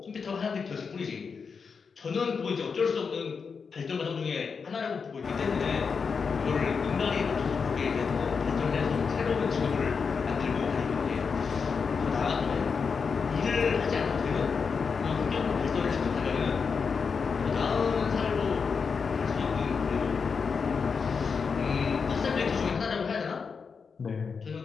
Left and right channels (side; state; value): right; quieter; 5.6 dB